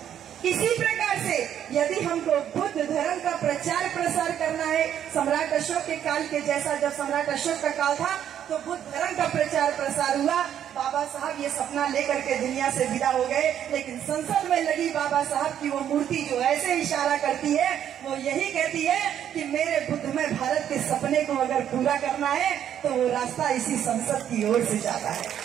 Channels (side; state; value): left; quieter; 9.9 dB